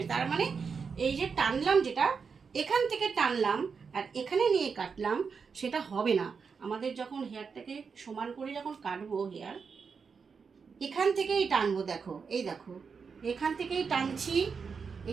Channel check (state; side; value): quieter; left; 5.6 dB